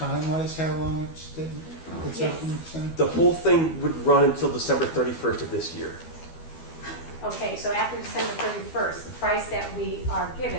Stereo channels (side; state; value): right; late; 12 ms